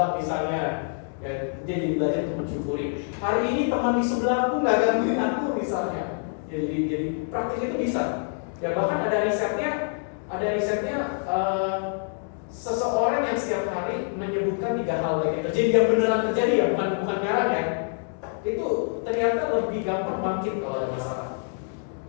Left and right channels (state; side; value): silent; right; 61 dB below the other